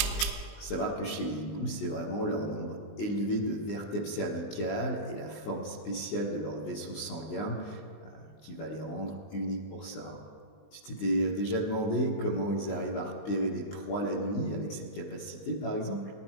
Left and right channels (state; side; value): late; right; 20 ms